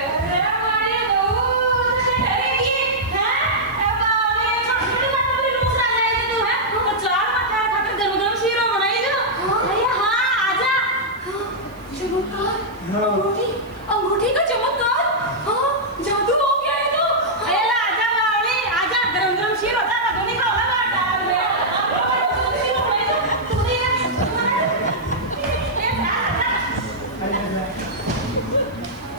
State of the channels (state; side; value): noise; right; hiss, 30 dB below the sound